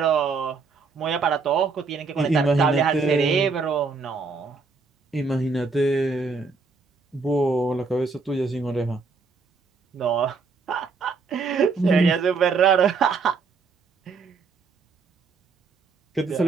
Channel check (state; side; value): quieter; left; 4.6 dB